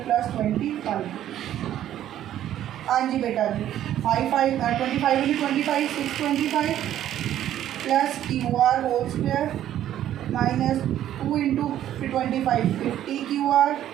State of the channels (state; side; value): quieter; left; 11.8 dB